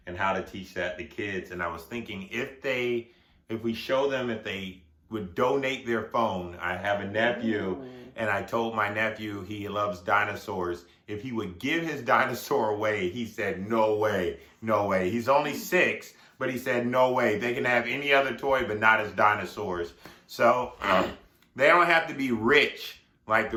and how to teach that to kids. And I was thinking, if we show them, if they would donate their phone. I have a nephew, and I told my nephew he loves dinosaurs. If he would give his dinosaur away, he said, "No way, no way." He's only 6, but he said, "No way. They can have any other toy, but not his dinosaurs." So they don't have to be rich like the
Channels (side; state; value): both; identical; correlation 1.00